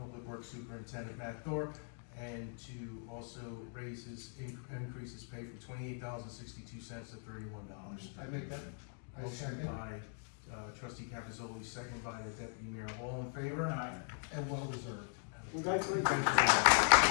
Public Works Superintendent Matt Thorpe, and to also increase his pay from $28.62 to $31. I make that, I Motion second, by trustee Capizoli, second by the deputy mayor, all in favor? Aye. and well deserved. We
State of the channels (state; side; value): silent; right; 51 dB below the other